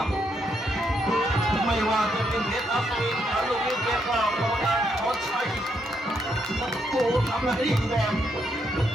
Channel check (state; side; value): normal; both; correlation 0.77